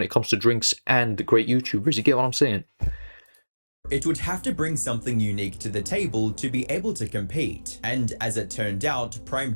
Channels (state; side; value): inverted; both; correlation -1.00